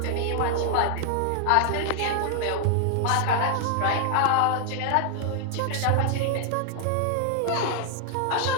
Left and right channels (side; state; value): both; different; correlation 0.00